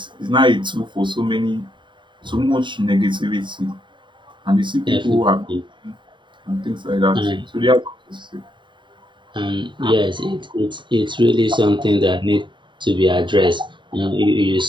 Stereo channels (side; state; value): left; late; 0.23 ms